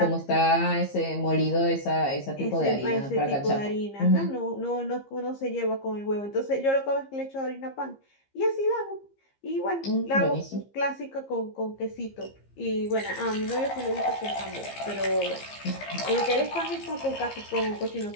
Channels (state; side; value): late; right; 15 ms